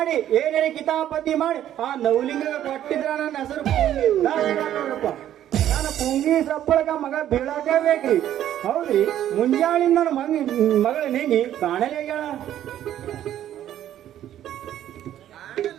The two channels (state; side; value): quieter; left; 11.6 dB